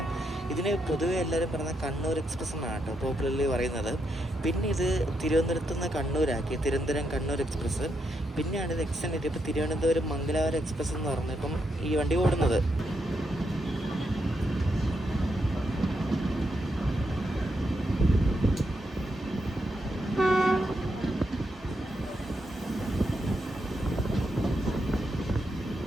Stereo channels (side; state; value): both; normal; correlation 0.81